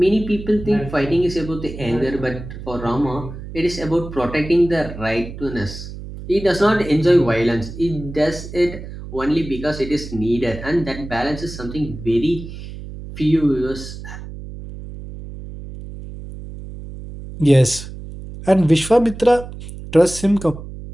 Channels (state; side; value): noise; right; hum, 12 dB below the sound